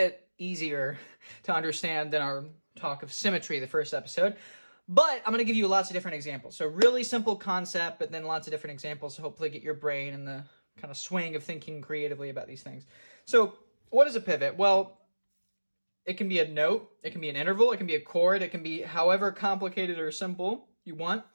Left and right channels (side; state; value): both; inverted; correlation -1.00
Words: easier to understand than our talk of symmetry, the first episode. But I'm going to give you lots of different examples. So really simple concept, but then lots of different examples to hopefully get your brain in the kind of swing of thinking creatively about these things. So what is a pivot? Well, it can be a note, it can be an interval, it can be a chord, it can be however complicated or simple you want.